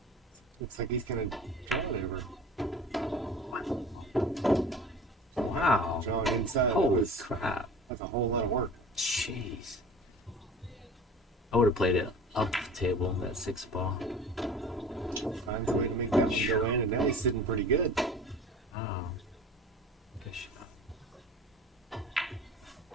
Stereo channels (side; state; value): both; normal; correlation 0.40